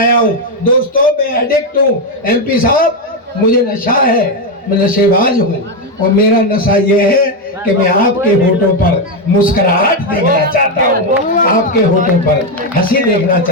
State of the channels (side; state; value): both; normal; correlation 0.06